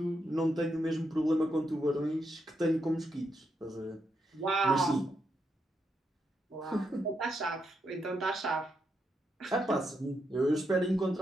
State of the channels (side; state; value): both; normal; correlation 0.81